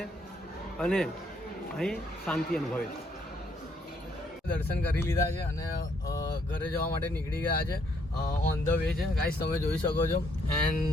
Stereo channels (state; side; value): normal; both; correlation 0.70